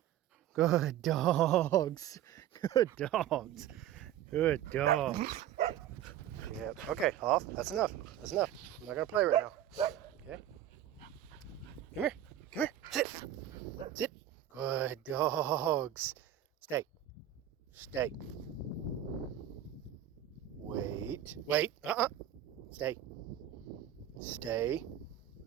Good dogs. Good dogs. Good dogs. Yep. Okay, off. That's enough. That's enough. I'm not gonna play right now. Okay. Come here. Come here. Sit. Good dogs. Stay. Wait.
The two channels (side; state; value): left; quieter; 11.5 dB